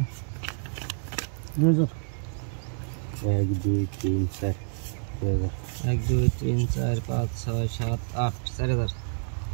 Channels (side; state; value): left; silent; digital silence